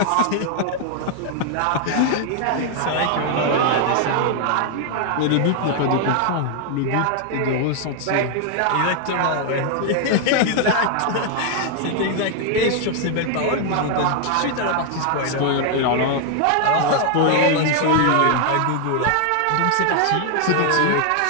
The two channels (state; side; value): different; both; correlation 0.00